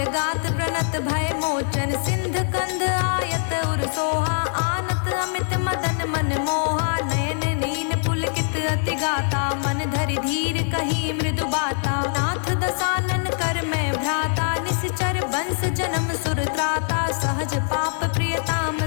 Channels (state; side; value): silent; right; 60 dB below the other